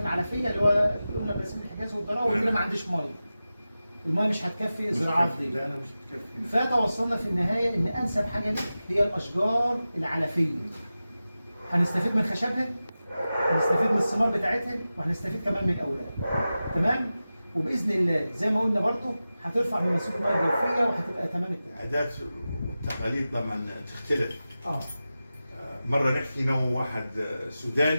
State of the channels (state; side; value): inverted; both; correlation -0.94